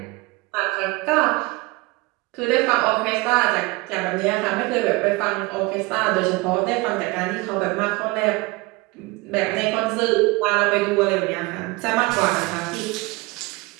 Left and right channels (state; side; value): quieter; left; 23.5 dB